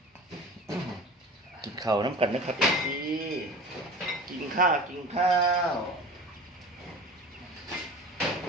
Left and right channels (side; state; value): both; normal; correlation 0.37